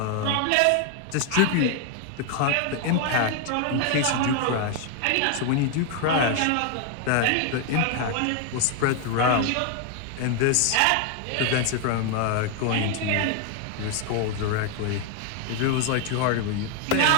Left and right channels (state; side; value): different; both; correlation 0.01